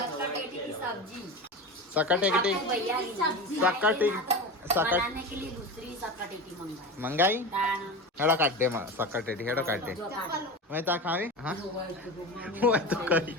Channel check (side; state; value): both; normal; correlation 0.26